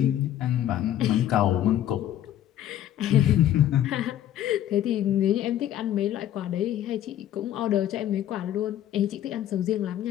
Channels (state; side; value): quieter; right; 11.7 dB